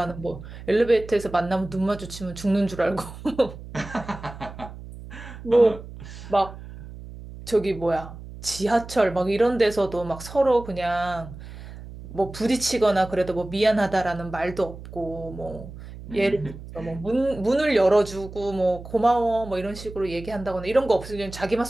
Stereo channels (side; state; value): right; noise; hum, 14 dB below the sound